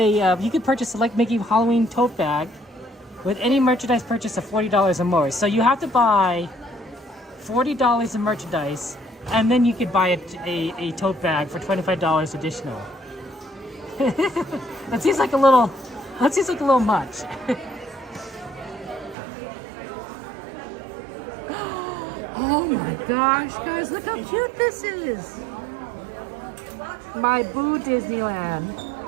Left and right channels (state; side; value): drops out; left; at 19.2 s